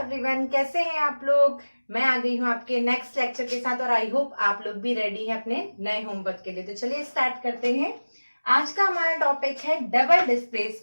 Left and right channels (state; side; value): inverted; both; correlation -1.00